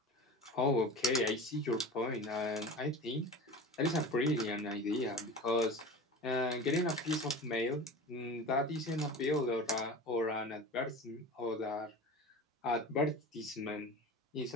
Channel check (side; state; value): both; normal; correlation 0.34